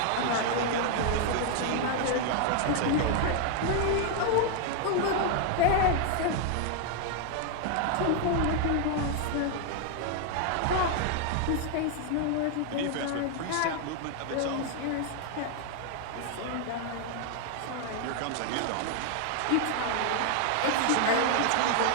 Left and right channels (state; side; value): different; both; correlation 0.00